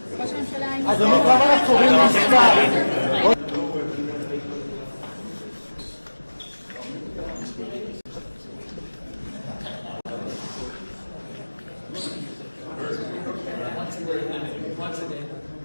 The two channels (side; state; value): both; inverted; correlation -1.00